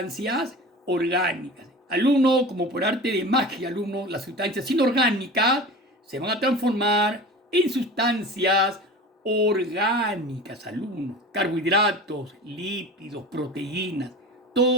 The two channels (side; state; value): both; normal; correlation 0.36